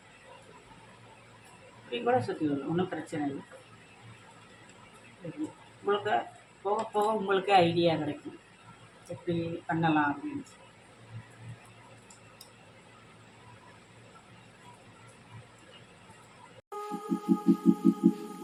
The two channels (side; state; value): both; identical; correlation 1.00